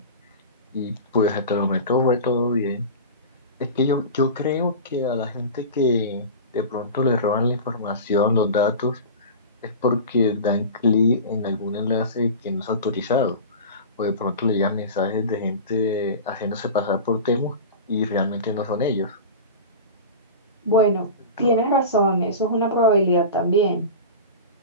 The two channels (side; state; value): both; inverted; correlation -0.31